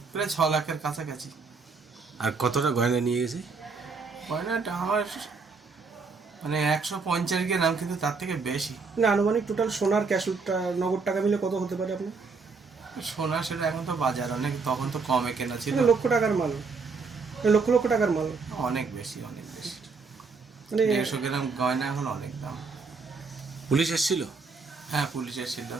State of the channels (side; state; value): left; quieter; 4.6 dB